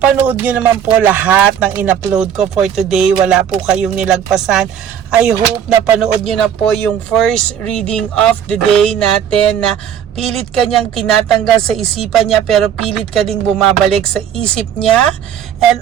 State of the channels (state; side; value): quieter; left; 9.0 dB